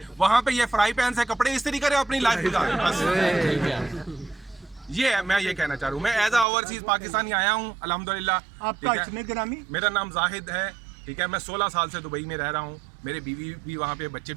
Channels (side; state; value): left; drops out; at 6.5 s